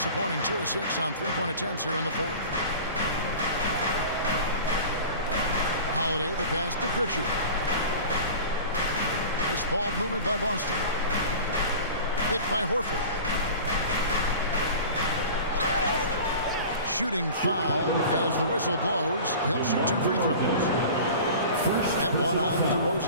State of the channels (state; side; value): inverted; both; correlation -0.38